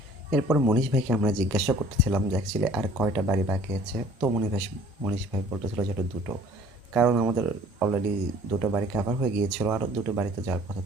এরপর মনীষ ভাইকে আমরা জিজ্ঞাসা করতেছিলাম যে অ্যাকচুয়ালি আর কয়টা বাড়ি বাকি আছে। তো মনীষ ভাই বলতেছিল যে এটা দুটো, কারণ আমাদের অলরেডি দুটো বাড়ি কাভার হয়ে গিয়েছিল, আরও দুটো বাড়িতে যাওয়ার কথা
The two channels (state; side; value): normal; both; correlation 0.52